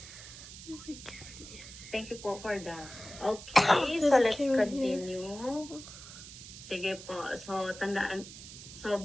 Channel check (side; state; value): right; noise; hiss, 14 dB below the sound